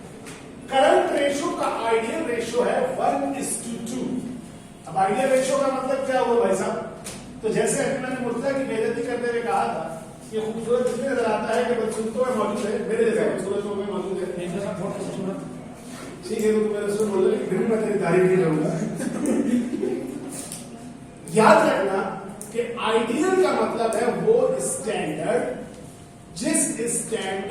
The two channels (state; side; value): identical; both; correlation 1.00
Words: करंट रेशियो का आइडियल रेशियो है 1:2। अब आइडियल रेशियो का मतलब क्या हुआ भाई साहब? तो जैसे अभी मैंने मुर्तजा की बेइज्जती करते हुए कहा था, ये खूबसूरत इसलिए नजर आता है कि बदसूरतों में मौजूद है, मेरे जैसे खूबसूरतों में मौजूद है। ठीक है, तो मेरे से बोलो, फिर भी मैं तेरी तारीफ नहीं करूंगा। याद रखना कि आइडियल का मतलब है वो स्टैंडर्ड जिस